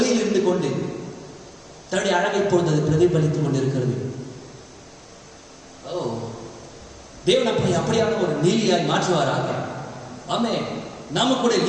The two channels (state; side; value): identical; both; correlation 1.00